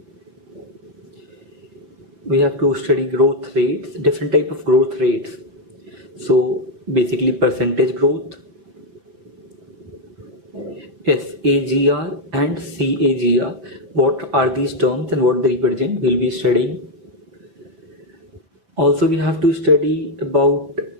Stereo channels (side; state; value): left; late; 5.5 ms